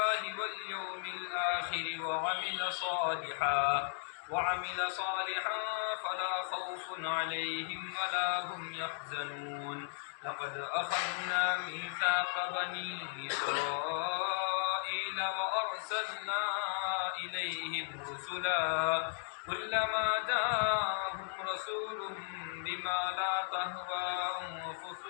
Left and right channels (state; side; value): silent; right; 54 dB below the other